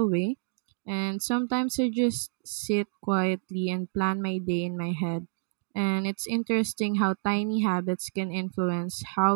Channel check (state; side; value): silent; left; digital silence